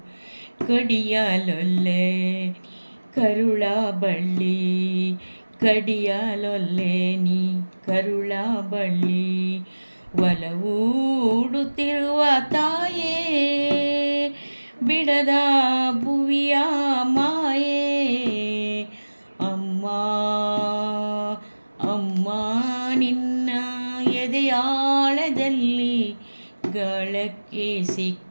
ಕಡಿಯಲೊಲ್ಲೆ ಕರುಳ ಬಳ್ಳಿ, ಕಡಿಯಲೊಲ್ಲೆ ನೀ ಕರುಳ ಬಳ್ಳಿ, ಒಲವೂಡುತ್ತಿರುವ ತಾಯೇ ಬಿಡದ ಭುವಿಯ ಮಾಯೇ. ಅಮ್ಮ ಅಮ್ಮ ನಿನ್ನ ಎದೆಯಾಳದಲ್ಲಿ ಗಾಳಕ್ಕೆ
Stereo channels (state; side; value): inverted; both; correlation -1.00